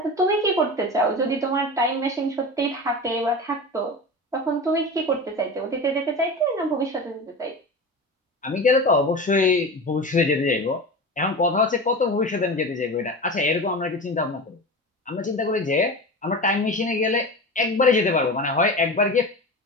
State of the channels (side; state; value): both; normal; correlation 0.28